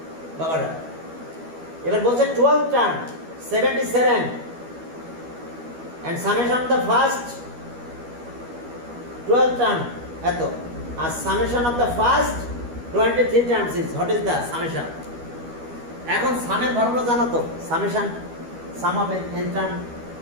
বাবারা। এবার বলছে 12 term 77 and summation of the first 12 term এত, আর summation of the first 23 terms is, what is the summation? এখন সামের ফর্মুলা জানো তো, summation some of n term,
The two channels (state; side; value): late; left; 12 ms